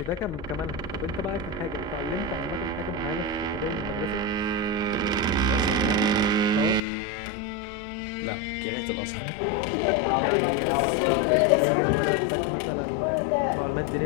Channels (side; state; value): right; drops out; at 6.8 s